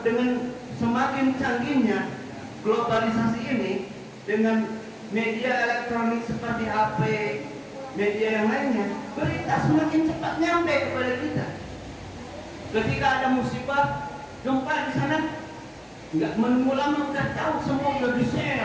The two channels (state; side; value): identical; both; correlation 1.00